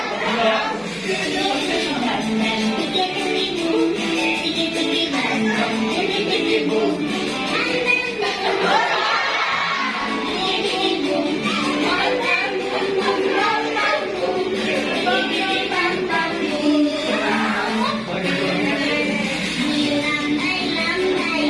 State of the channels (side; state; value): both; identical; correlation 1.00